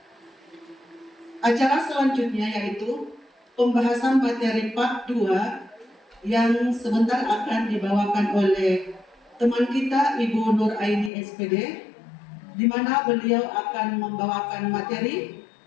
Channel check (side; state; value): right; drops out; at 11.1 s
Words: Acara selanjutnya yaitu pembahasan materi part 2 yang sebentar akan dibawakan oleh teman kita Ibu Nur Aini SPD, di mana beliau akan membawakan materi